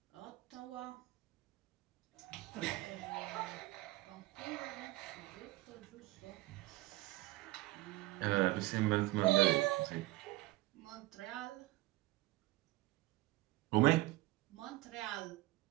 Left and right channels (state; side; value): quieter; left; 19.2 dB